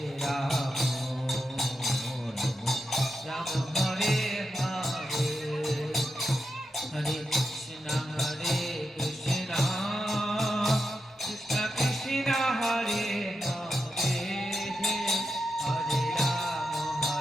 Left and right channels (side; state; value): both; normal; correlation 0.87